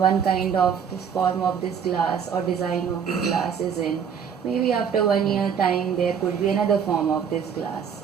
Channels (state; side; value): quieter; left; 7.3 dB